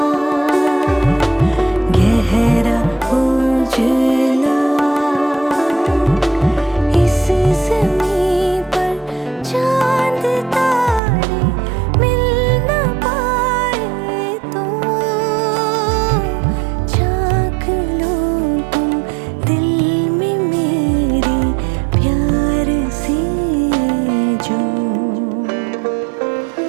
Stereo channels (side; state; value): left; drops out; at 11.0 s